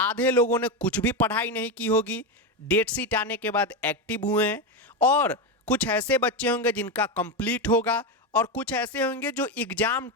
लोगों ने कुछ भी पढ़ाई नहीं की होगी, डेट शीट आने के बाद एक्टिव हुए हैं, और कुछ ऐसे बच्चे होंगे जिनका कंप्लीट होगा, और कुछ ऐसे होंगे जो एग्जाम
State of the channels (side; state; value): both; normal; correlation 0.12